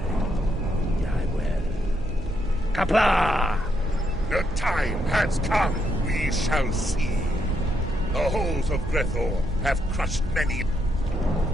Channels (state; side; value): normal; both; correlation 0.78